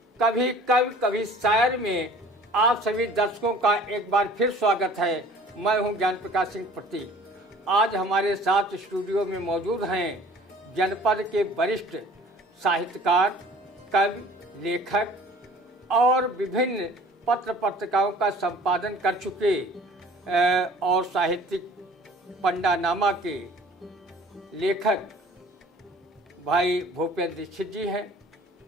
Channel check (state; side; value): normal; both; correlation 0.49